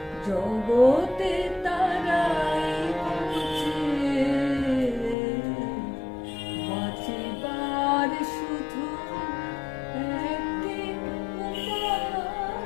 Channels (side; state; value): right; drops out; at 5.2 s